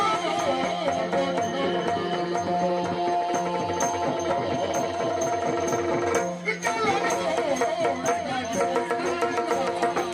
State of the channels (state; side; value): identical; both; correlation 1.00